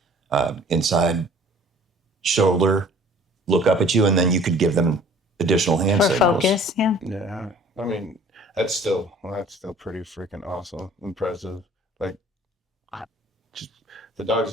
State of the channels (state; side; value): normal; both; correlation 0.51